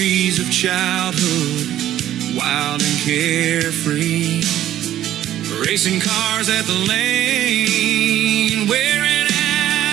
of childhood, wild and carefree. Racing cars at the lane, wearing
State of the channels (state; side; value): quieter; left; 12.4 dB